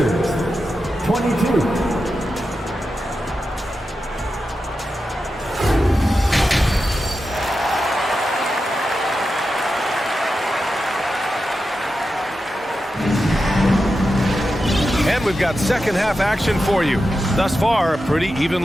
22. And we've got second half action for you. Thus far, a pretty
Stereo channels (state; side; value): normal; both; correlation 0.90